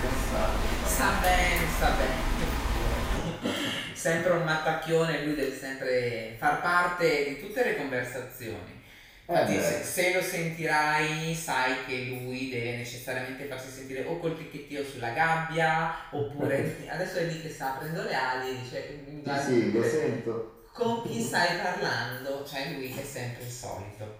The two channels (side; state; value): both; identical; correlation 1.00